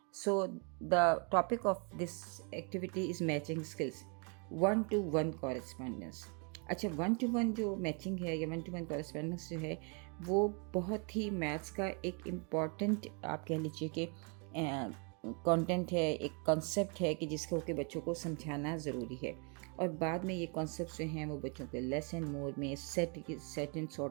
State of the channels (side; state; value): left; quieter; 35.6 dB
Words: So the topic of this activity is matching skills, 1-to-1 correspondence. अच्छा, 1-to-1 जो matching है या 1-to-1 correspondence जो है वो बहुत ही maths का एक इम्पॉर्टेंट आप कह लीजिए कि कंटेंट है, एक कॉन्सेप्ट है कि जिसको के बच्चों को समझाना ज़रूरी है। और बाद में ये कॉन्सेप्ट जो हैं वो बच्चों के लेस एंड मोर में, सेट एंड